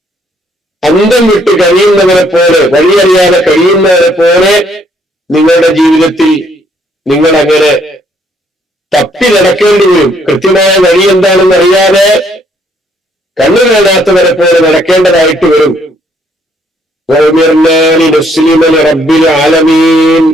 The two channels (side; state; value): both; normal; correlation 0.68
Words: അന്തം വിട്ട് കഴിയുന്നവരെ പോലെ, വഴിയറിയാതെ കഴിയുന്നവരെ പോലെ നിങ്ങളുടെ ജീവിതത്തിൽ നിങ്ങൾ അങ്ങനെ തപ്പി നടക്കേണ്ടി വരും. കൃത്യമായ വഴി എന്താണെന്ന് അറിയാതെ കണ്ണു കാണാത്തവരെ പോലെ നടക്കേണ്ടതായിട്ട് വരും. റബ്ബിൽ ആലമീൻ,